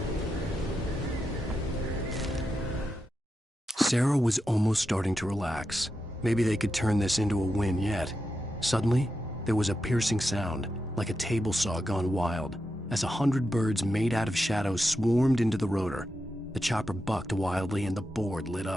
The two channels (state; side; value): normal; both; correlation 0.87